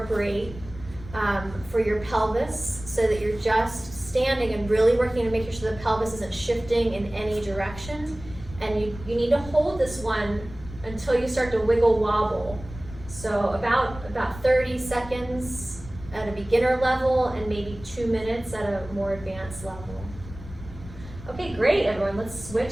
for your pelvis so that you're just standing and really working to make sure the pelvis isn't shifting in any direction. And you need to hold this one until you start to wiggle wobble. So about 30 seconds at a beginner level and maybe 2 minutes at a more advanced level. Okay, great everyone, let's switch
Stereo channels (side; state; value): left; noise; rumble, 15 dB below the sound